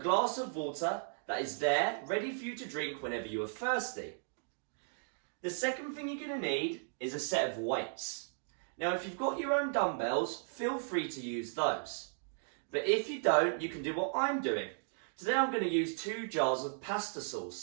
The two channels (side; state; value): left; silent; digital silence